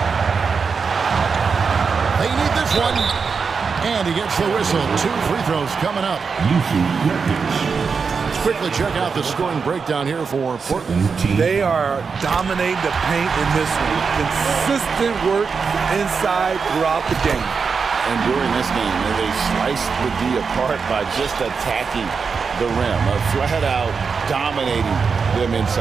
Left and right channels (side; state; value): left; quieter; 5.4 dB